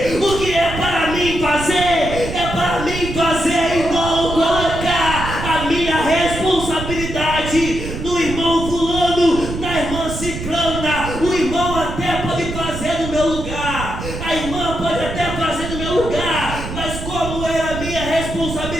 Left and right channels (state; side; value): noise; right; rumble, 7 dB below the sound